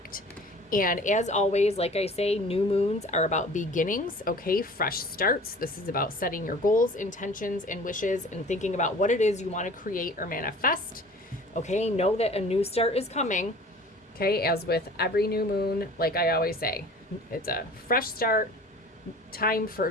And as always, like I say, new moons are about beginnings, okay? Fresh starts. This is about setting your goals, intentions, and wishes and thinking about what it is you want to create or manifest, okay? Know that a new start is coming, okay? As with every new moon, like I always say, it's a fresh start, time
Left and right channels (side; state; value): both; normal; correlation 0.45